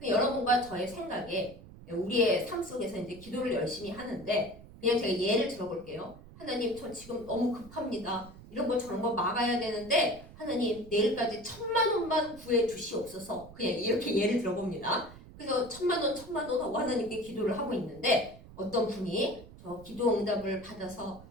여러분과 저의 생각에 우리의 삶 속에서 이제 기도를 열심히 하는데 그냥 제가 예를 들어볼게요. 하나님 저 지금 너무 급합니다. 이런 거 저런 거 막아야 되는데 하나님 내일까지 1,000,000원만 구해 주시옵소서. 그냥 이렇게 예를 들어봅니다. 그래서 1,000,000원 하고 하나님께 기도를 하고 있는데 어떤 분이 저 기도 응답을 받아서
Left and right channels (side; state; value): right; noise; rumble, 18 dB below the sound